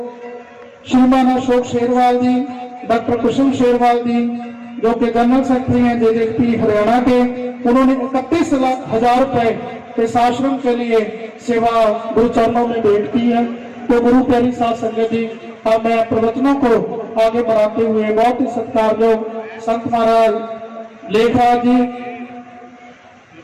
श्रीमान अशोक शेरवाल जी, डॉक्टर कुसुम शेरवाल जी जो कि जनरल सेक्रेटरी हैं जेजेपी हरियाणा के, उन्होंने 31,00,000 रुपए इस आश्रम के लिए सेवा गुरु चरणों में भेंट की है। तो गुरु प्यारी साध संगत जी, अब मैं प्रवचनों को आगे बढ़ाते हुए बहुत ही सत्कारयोग संत महाराज लेखराज जी,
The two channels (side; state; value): both; identical; correlation 1.00